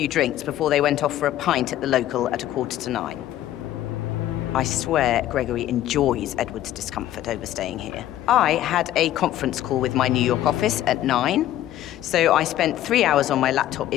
drinks before they went off for a pint at the local at 8:45. I swear Gregory enjoys Edward's discomfort over staying here. I had a conference call with my New York office at 9, so I spent 3 hours on my laptop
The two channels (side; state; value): right; quieter; 13.0 dB